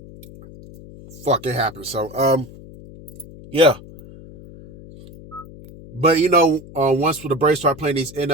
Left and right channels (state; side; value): noise; left; hum, 18 dB below the sound